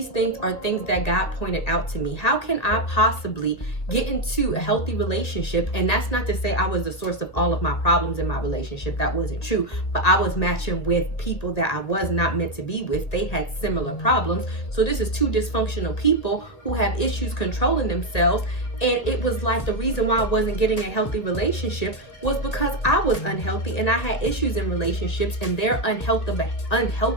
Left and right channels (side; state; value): right; late; 1.7 ms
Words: things are things that God pointed out to me. How can I possibly get into a healthy relationship? And that's not to say I was the source of all of my problems in my relationship. That wasn't true. But I was matching with people that I was not meant to be with. They had similar problems. So this is two dysfunctional people who have issues controlling themselves. And it was like the reason why I wasn't getting a healthy relationship was because I was unhealthy and I had issues in relationships, and their